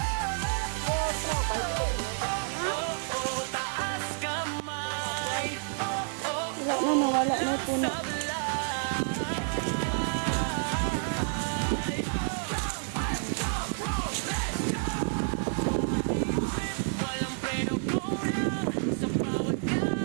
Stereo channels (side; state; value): left; silent; 58 dB below the other